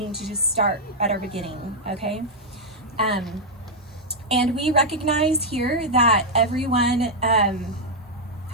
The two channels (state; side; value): normal; both; correlation -0.03